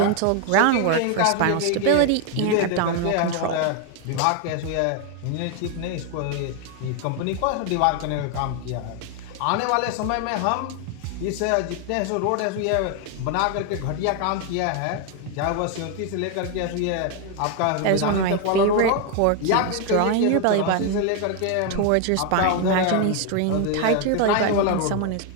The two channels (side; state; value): both; different; correlation 0.01